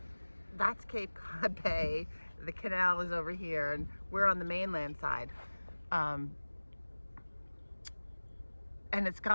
that's Cape Cod Bay, the canal is over here, and we're on the mainland side. And it's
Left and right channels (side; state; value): both; inverted; correlation -1.00